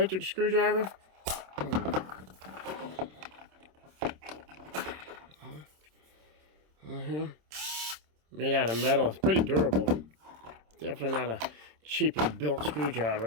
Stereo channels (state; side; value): late; left; 26 ms